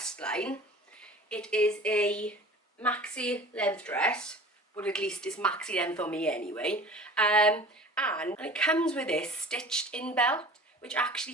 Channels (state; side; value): normal; both; correlation 0.42